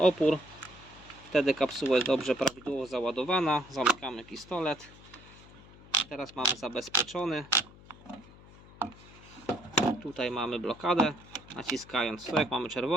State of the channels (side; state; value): left; noise; hum, 21 dB below the sound